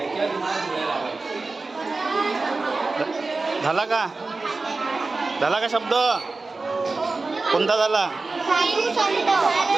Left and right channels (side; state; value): left; quieter; 3.7 dB